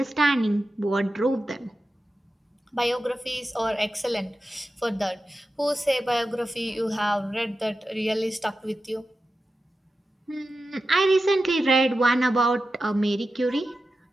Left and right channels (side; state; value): both; normal; correlation 0.92